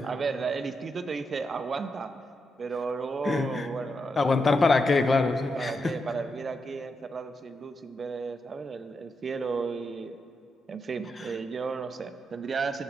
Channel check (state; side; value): normal; both; correlation 0.84